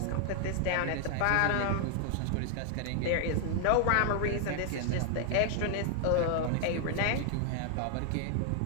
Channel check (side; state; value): both; different; correlation 0.00